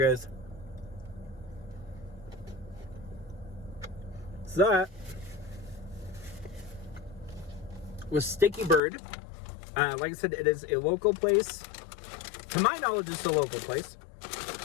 guys. So that was Sticky Bird. Like I said, it is a local place. To my knowledge, it's a local place.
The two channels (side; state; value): right; drops out; at 8.8 s